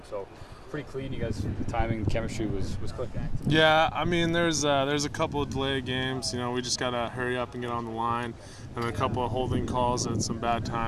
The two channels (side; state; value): both; identical; correlation 1.00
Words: so pretty clean. You guys, the timing, chemistry was clicking. Yeah, I mean, there's a couple of delayed games. We just gotta hurry up and get on the line, and a couple of holding calls at some bad